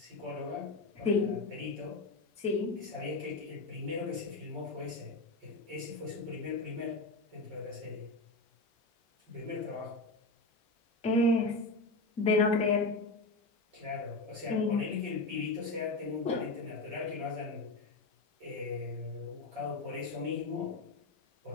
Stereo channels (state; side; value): quieter; right; 3.1 dB